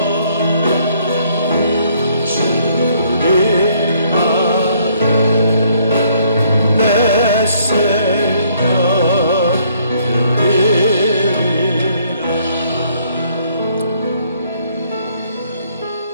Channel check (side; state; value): both; inverted; correlation -0.65